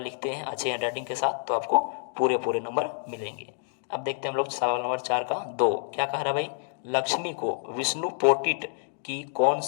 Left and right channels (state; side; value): silent; right; digital silence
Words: हैं अच्छे हैंडराइटिंग के साथ तो आपको पूरे पूरे नंबर मिलेंगे। अब देखते हैं हम लोग सवाल नंबर 4 का 2 क्या कह रहा है भाई, लक्ष्मी को विष्णु पोटिट की कौन